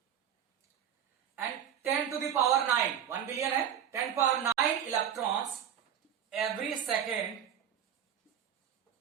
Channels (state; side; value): quieter; left; 9.2 dB